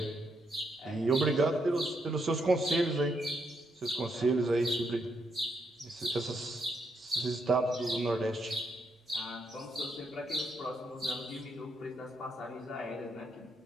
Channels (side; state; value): both; normal; correlation 0.77